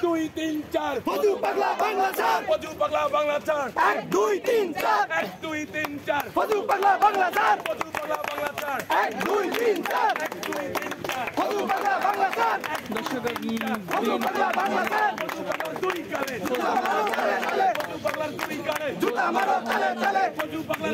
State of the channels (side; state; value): both; identical; correlation 1.00